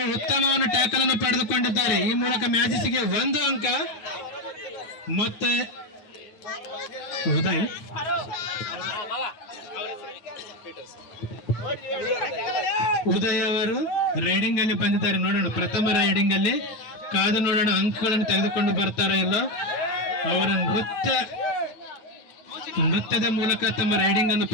ಉತ್ತಮವನ್ನು ಟ್ಯಾಕಲ್ ಅನ್ನು ಪಡೆದುಕೊಂಡಿದ್ದಾರೆ. ಈ ಮೂಲಕ ಮ್ಯಾಜಿಸ್ಗೆ 1 ಅಂಕ. ಮತ್ತೆ ಉದಯ್ ಅವರು ರೈಡಿಂಗ್ ಅಲ್ಲಿ ಬಂದಿದ್ದಾರೆ. ನೋಡೋಣ ಪ್ರಥಮ ರೈಡಿಂಗ್ ಅಲ್ಲಿ. ಕಾದು ನೋಡೋಣ ಅಂಕಗಳನ್ನು ತೆಗೆದುಕೊಂಡು ಬರ್ತಾರೋ ಇಲ್ಲ. ಅವರ ನೃತ್ಯದ ಮೂಲಕ ತಮ್ಮ ರೈಡಿಂಗ್ ಅನ್ನು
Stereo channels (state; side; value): late; right; 9.5 ms